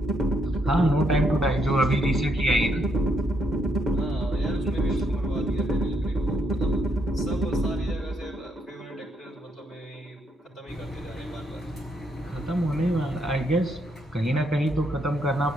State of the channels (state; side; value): normal; both; correlation 0.75